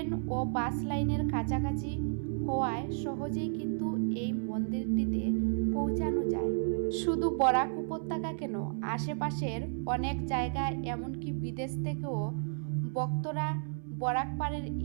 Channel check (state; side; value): silent; left; 56 dB below the other